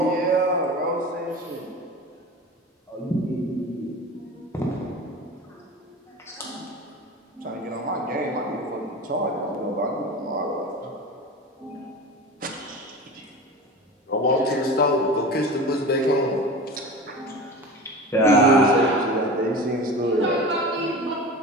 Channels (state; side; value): normal; both; correlation 0.33